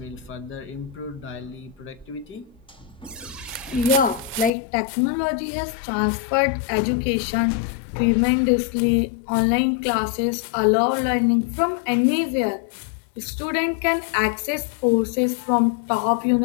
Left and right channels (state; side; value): drops out; right; at 4.5 s